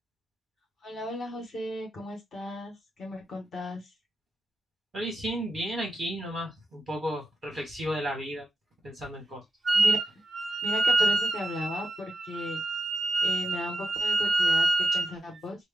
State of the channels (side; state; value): both; normal; correlation 0.90